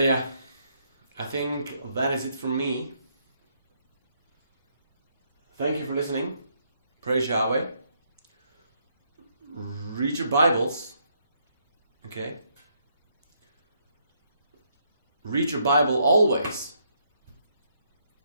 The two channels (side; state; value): both; inverted; correlation -0.73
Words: I think that is it from me. Thank you for listening. Praise Yahweh. Read your Bibles. Okay? Read your Bible always.